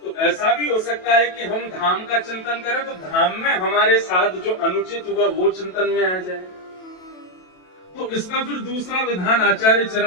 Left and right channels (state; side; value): late; right; 27 ms